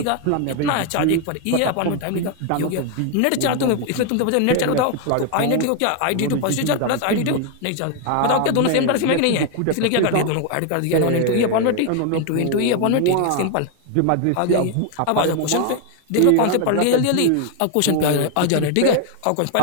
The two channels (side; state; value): both; different; correlation 0.01